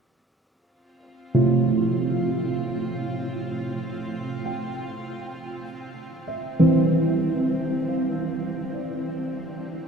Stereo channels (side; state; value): both; normal; correlation 0.54